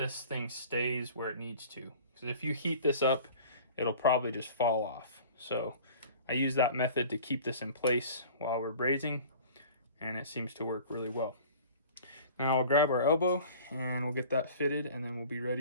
thing stays where it needs to. Because if you heat this up, it'll probably just fall off. So I use that method to keep this in place while we're brazing, and it seems to work really well. Now I'll grab our elbow and we'll get that fitted, and then we'll be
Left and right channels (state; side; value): inverted; both; correlation -0.44